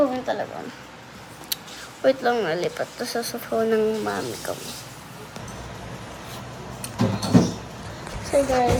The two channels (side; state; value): both; identical; correlation 1.00